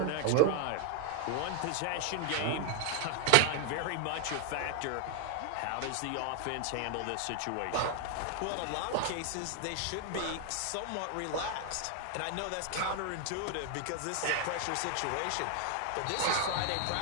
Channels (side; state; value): both; different; correlation 0.00